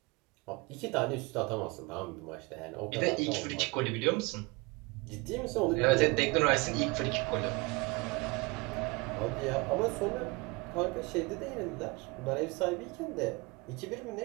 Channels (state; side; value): quieter; left; 26.2 dB